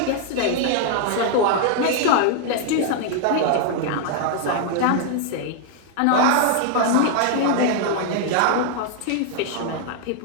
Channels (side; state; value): both; different; correlation 0.00